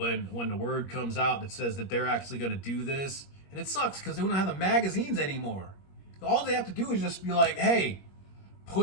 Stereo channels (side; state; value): right; late; 21 ms